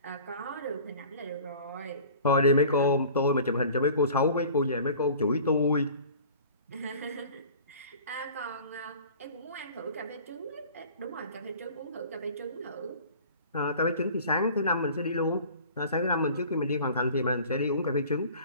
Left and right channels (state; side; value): inverted; both; correlation -0.45